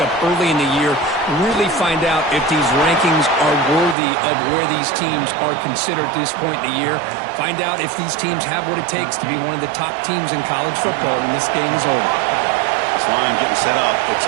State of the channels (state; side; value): drops out; left; at 4.0 s